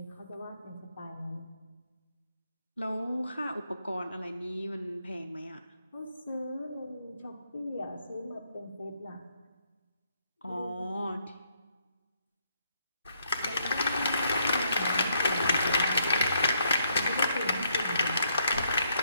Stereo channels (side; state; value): both; inverted; correlation -0.73